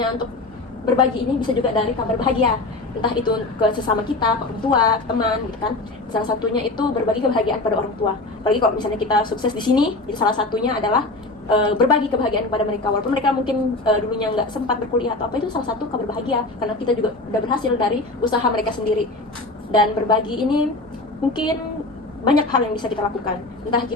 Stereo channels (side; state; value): right; quieter; 3.0 dB